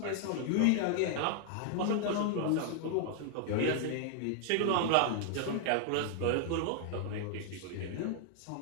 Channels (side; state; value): both; different; correlation 0.00